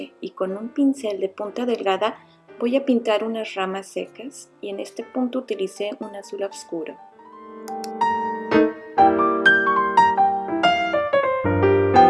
y con un pincel de punta delgada voy a pintar unas ramas secas, y en este punto utilicé un azul oscuro.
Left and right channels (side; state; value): both; identical; correlation 1.00